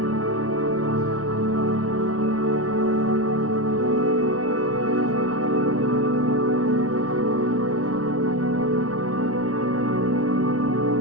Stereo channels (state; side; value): late; left; 0.66 ms